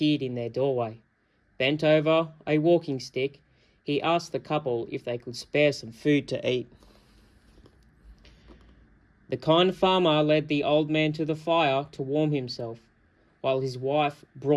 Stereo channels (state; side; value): identical; both; correlation 1.00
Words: in their doorway. Bent over a walking stick, he asked the couple if they could spare some food to eat. The kind farmer led the old man to the fire to warm himself, while his wife